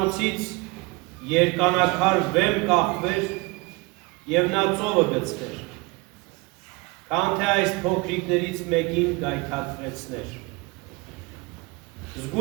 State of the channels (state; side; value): quieter; left; 25.9 dB